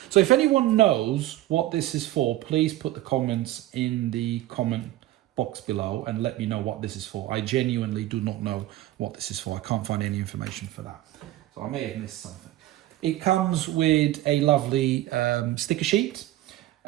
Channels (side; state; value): left; quieter; 15.4 dB